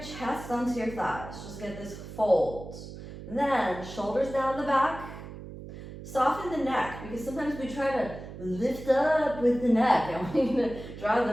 chest onto your thighs. Just get this fold. Then, shoulders down the back. Soften the neck, because sometimes we try to lift up with the neck. I want you to draw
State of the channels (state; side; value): noise; right; hum, 12 dB below the sound